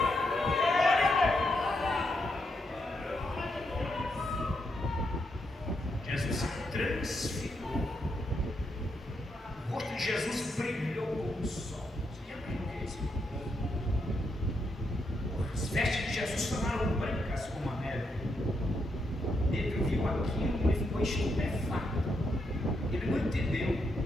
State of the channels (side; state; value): both; normal; correlation 0.81